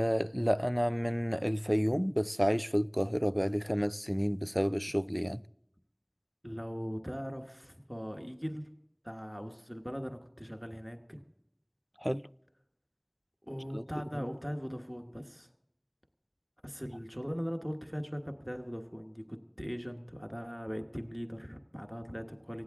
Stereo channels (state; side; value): identical; both; correlation 1.00